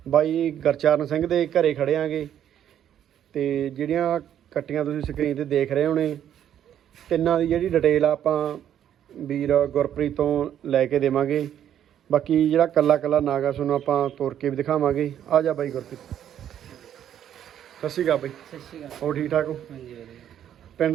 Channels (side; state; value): left; quieter; 10.2 dB